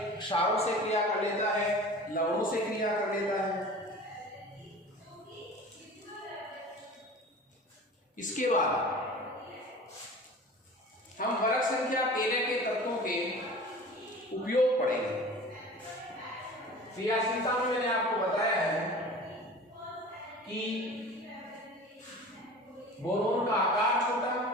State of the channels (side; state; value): both; normal; correlation 0.39